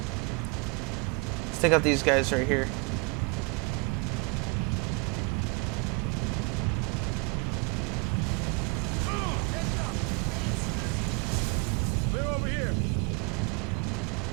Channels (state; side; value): quieter; left; 31.6 dB